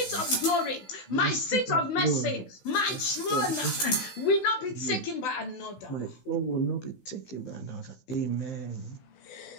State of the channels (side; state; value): right; late; 15 ms